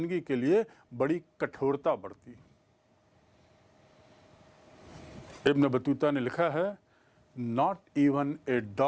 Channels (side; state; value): both; identical; correlation 1.00